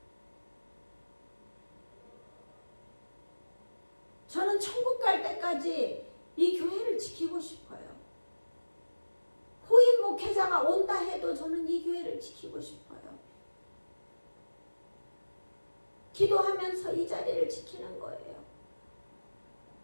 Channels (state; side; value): inverted; both; correlation -1.00